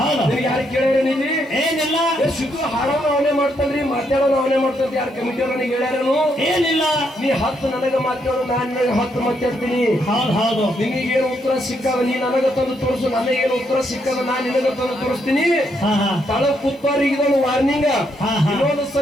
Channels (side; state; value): both; normal; correlation 0.76